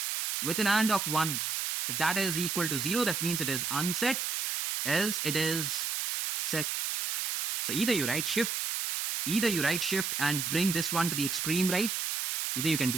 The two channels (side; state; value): right; noise; hiss, 1 dB below the sound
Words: with an AND of 1, if that is equal to 0, that means it is unset, else it is set. So either you write shift Either you right shift and bring this one to the extreme right. Either you can